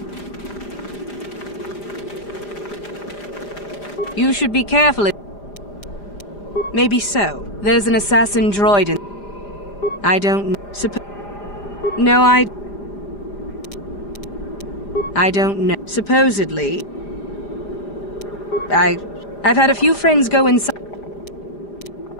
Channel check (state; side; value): late; right; 5.0 ms